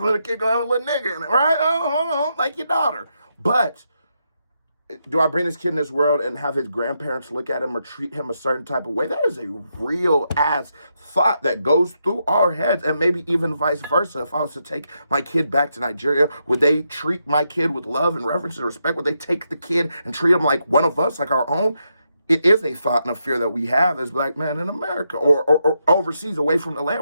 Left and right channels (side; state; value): both; inverted; correlation -0.82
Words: the kid going to have a little nigga in it, right? Like your daughter. But do I bring this kid in this world and have his grandparents look at him or treat him a certain type of way? That is a real ass thought that goes through our heads, and maybe even vice versa. If I was to take my kid back to Nigeria, would they treat my kid with love and reverence and respect? Would they take the kid and treat him like one of us, like our own? It is a thought and a fear that we have as black men in America or overseas, away from the